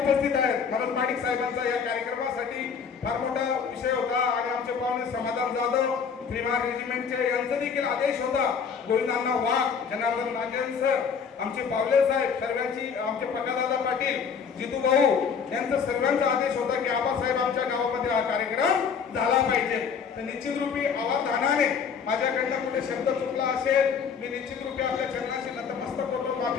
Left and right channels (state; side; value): quieter; right; 6.4 dB